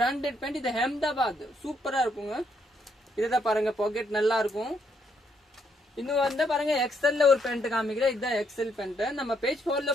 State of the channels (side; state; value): both; normal; correlation 0.74